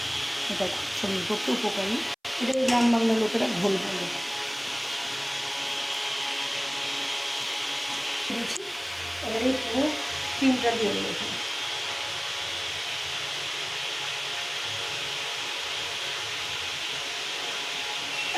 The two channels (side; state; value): both; identical; correlation 1.00